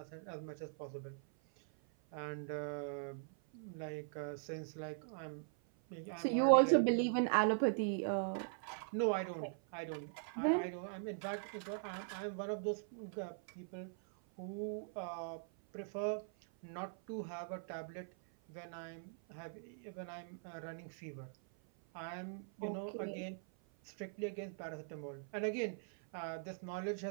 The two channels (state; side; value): silent; left; 50 dB below the other